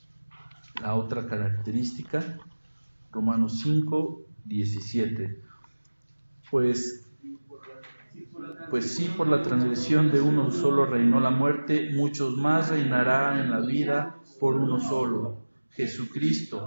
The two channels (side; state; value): both; inverted; correlation -1.00